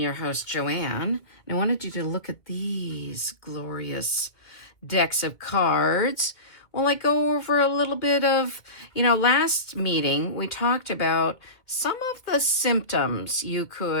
host, Joanne, and I wanted you to look at these glorious decks of cards. Well, I go over a little bit of, last meeting we talked about some of the symptoms you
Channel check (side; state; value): right; late; 2.1 ms